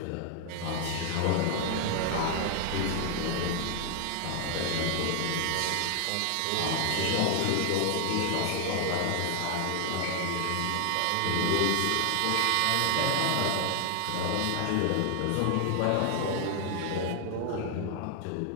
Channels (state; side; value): different; both; correlation 0.00